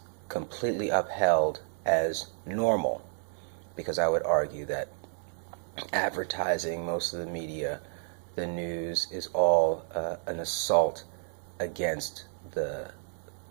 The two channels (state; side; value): silent; left; digital silence